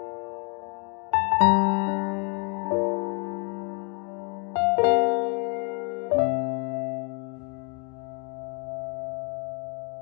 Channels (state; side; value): quieter; right; 35.7 dB